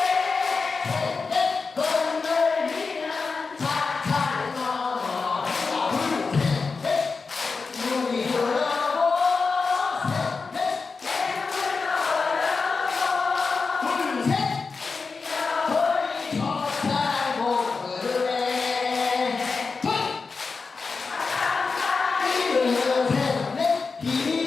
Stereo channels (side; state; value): right; quieter; 4.5 dB